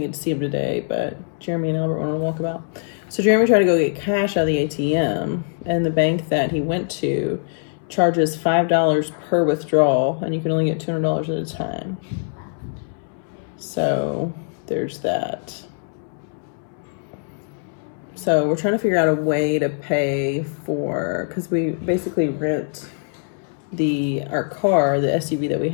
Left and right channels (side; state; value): right; silent; 64 dB below the other